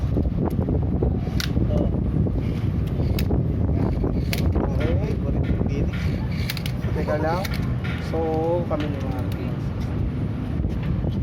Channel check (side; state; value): both; identical; correlation 1.00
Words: Okay, burin yung gini. Teka lang. So, kami ni Marky.